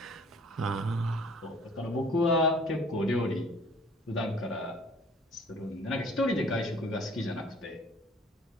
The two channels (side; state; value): both; normal; correlation 0.53